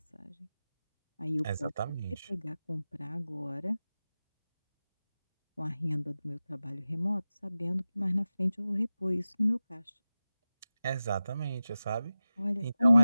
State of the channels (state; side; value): inverted; both; correlation -0.95